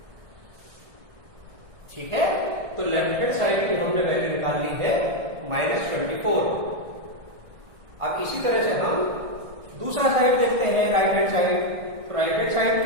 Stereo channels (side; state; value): left; late; 1.6 ms